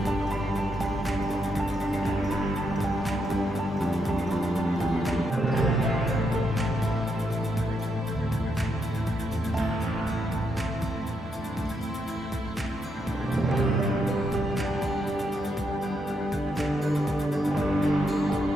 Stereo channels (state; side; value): normal; both; correlation 0.80